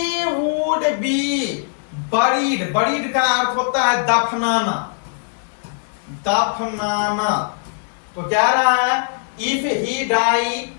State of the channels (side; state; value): right; silent; 66 dB below the other